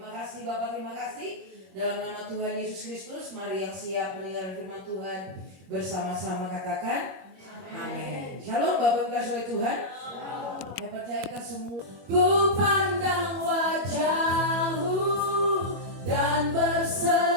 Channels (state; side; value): late; left; 21 ms